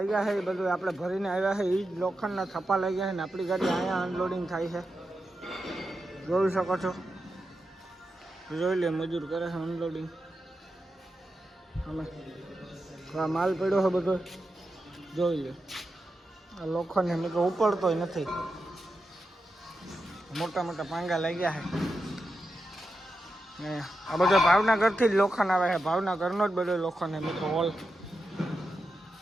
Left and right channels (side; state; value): both; normal; correlation 0.88